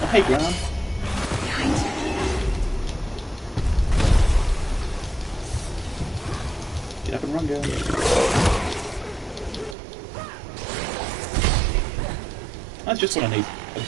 Oh, hey, Graham. Get up and run, girl. That's just what I need. A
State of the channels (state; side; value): drops out; left; at 9.8 s